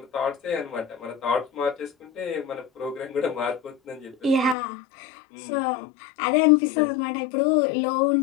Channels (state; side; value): drops out; right; at 4.5 s